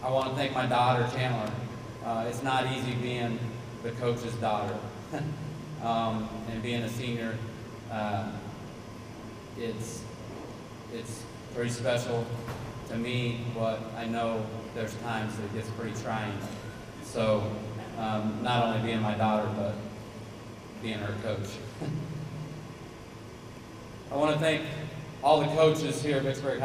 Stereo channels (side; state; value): both; identical; correlation 1.00